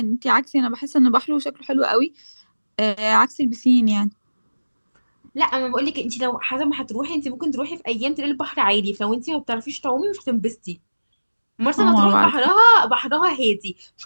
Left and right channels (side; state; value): both; inverted; correlation -1.00